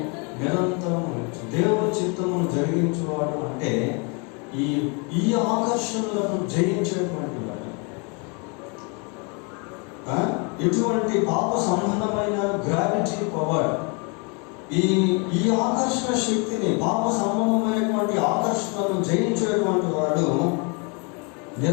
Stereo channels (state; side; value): quieter; right; 33.3 dB